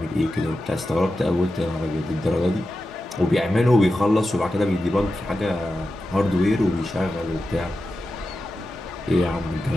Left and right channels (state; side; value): normal; both; correlation 0.91